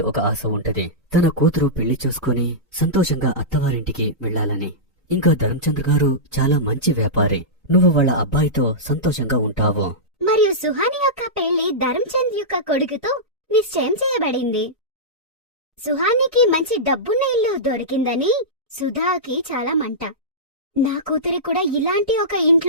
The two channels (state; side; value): normal; both; correlation -0.14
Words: ఒక ఆశ ఉంటది. తన కూతురు పెళ్లి చూసుకుని సంతోషంగా అత్తవారింటికి వెళ్లాలని. ఇంకా ధర్మచంద్ర గారు చాలా మంచి వ్యాపారి. నువ్వు వాళ్ళ అబ్బాయితో సంతోషంగా ఉంటావు. మరియు సుహాని యొక్క పెళ్లి ధర్మచంద్ యొక్క కొడుకుతో నిశ్చయం చేయబడింది. సుహానికి మంచి డబ్బున్న ఇల్లు దొరికిందని సుధాకి చాలా మంట. నా కూతురి కూడా ఇలాంటి ఒక